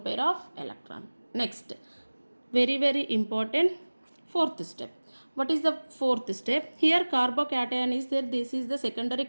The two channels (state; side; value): inverted; both; correlation -1.00